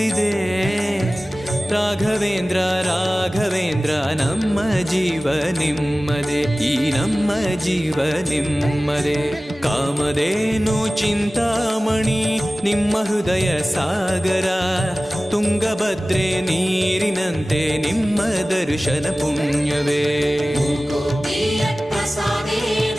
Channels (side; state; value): both; normal; correlation 0.97